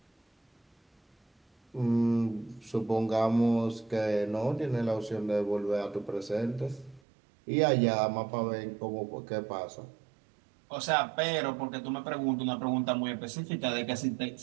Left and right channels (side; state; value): left; drops out; at 7.0 s